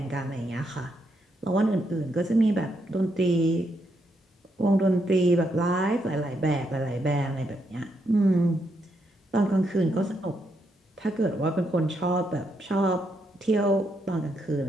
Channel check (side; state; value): both; normal; correlation 0.78